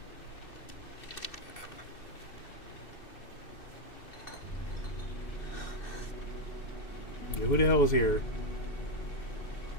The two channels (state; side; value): late; right; 2.6 ms